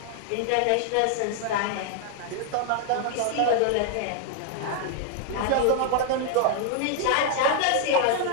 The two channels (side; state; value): both; different; correlation 0.00